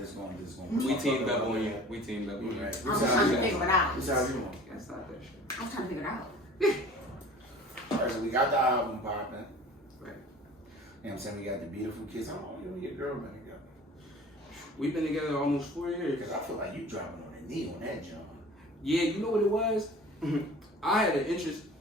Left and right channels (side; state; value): both; normal; correlation 0.43